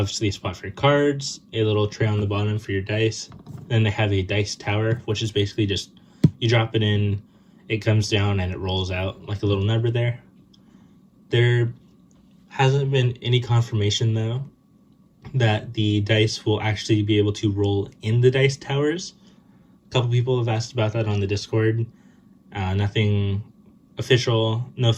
a spot for cards, a little tray on the bottom for your dice. Then they have a dice tower, which is basically just you drop it in, it comes down, and it rolls out like a little number there. There hasn't been any confirmation, though, that the dice will actually be able to roll in the dice towers. A couple people have asked about that on the Discord. Nothing official, no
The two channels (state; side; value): identical; both; correlation 1.00